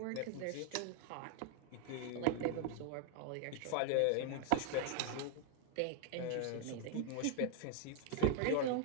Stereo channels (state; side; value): different; both; correlation 0.00